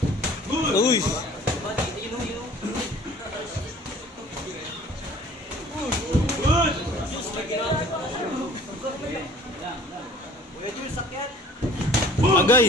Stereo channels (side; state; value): both; normal; correlation 0.50